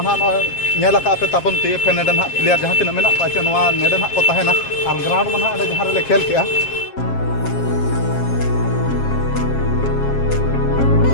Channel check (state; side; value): late; right; 7.4 ms